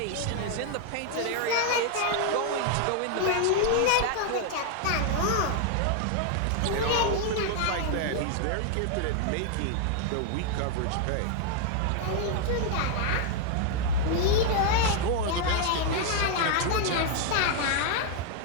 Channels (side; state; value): both; different; correlation 0.00